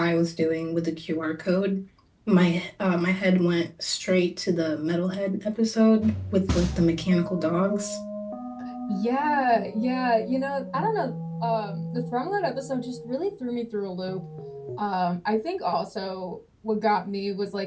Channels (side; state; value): both; identical; correlation 1.00